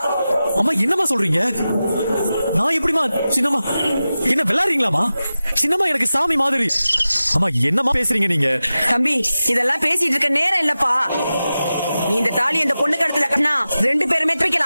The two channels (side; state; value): both; inverted; correlation -0.94